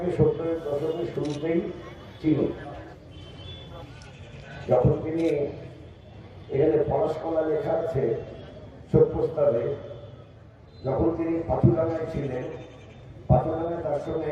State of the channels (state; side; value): identical; both; correlation 1.00